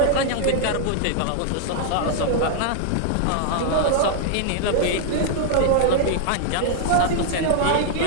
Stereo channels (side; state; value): both; different; correlation -0.01